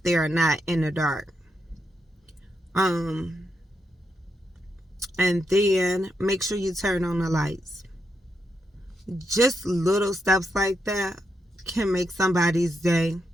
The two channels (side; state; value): both; normal; correlation 0.82